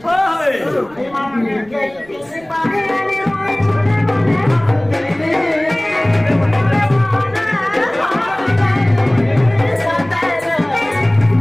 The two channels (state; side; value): noise; right; rumble, 26 dB below the sound